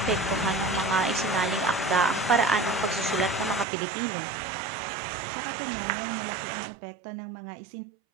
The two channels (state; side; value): drops out; left; at 3.7 s